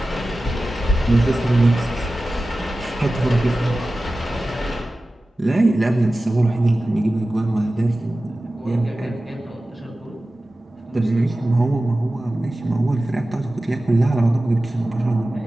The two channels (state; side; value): normal; both; correlation 0.95